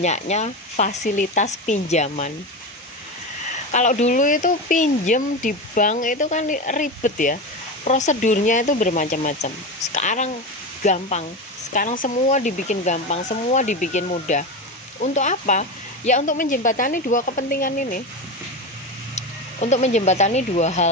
fasilitas pinjaman. Kalau dulu itu pinjem di bank itu kan ribet ya, prosedurnya itu bermacam-macam. Sekarang gampang, sekarang semua dibikin gampang, semua dibikin mudah. Untuk apa? Ya untuk menjembatani dua kepentingan ini, untuk menjembatani dua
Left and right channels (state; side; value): normal; both; correlation 0.20